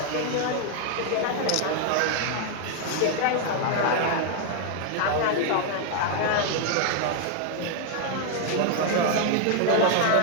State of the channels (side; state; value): both; different; correlation 0.00